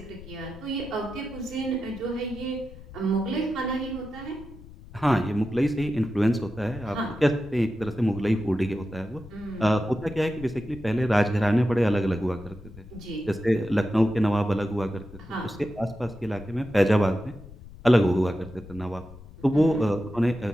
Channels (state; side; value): noise; left; rumble, 17 dB below the sound